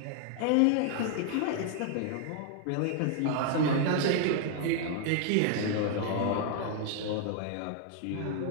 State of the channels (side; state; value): both; different; correlation 0.00